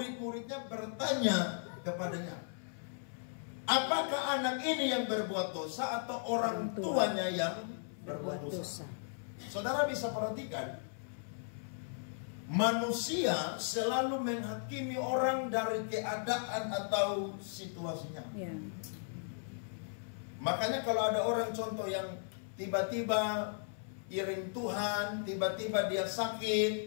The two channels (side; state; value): right; silent; 54 dB below the other